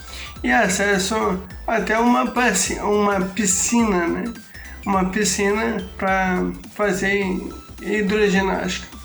e acesso até uma piscina, né, uma piscina para fazer hidroginástica.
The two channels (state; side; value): identical; both; correlation 1.00